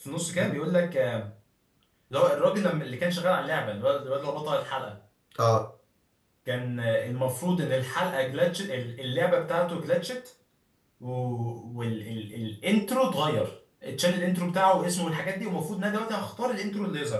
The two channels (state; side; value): identical; both; correlation 1.00